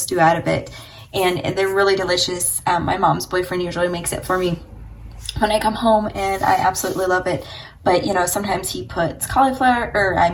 out of it. And they're really delicious. My mom's boyfriend usually makes it for me when I come home, and I absolutely love it. But sometimes he puts cauliflower, or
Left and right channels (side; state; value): both; identical; correlation 1.00